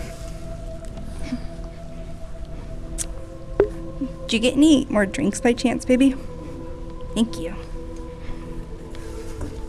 Did you get any more drinks by chance, baby? Thank you.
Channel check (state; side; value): identical; both; correlation 1.00